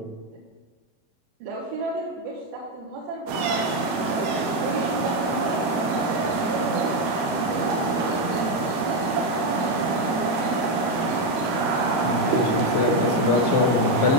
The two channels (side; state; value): left; late; 13 ms